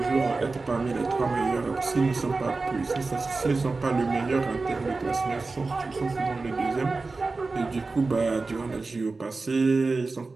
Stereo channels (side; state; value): left; quieter; 3.8 dB